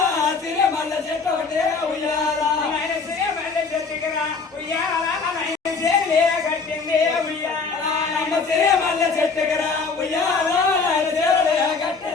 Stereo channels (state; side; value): quieter; right; 4.7 dB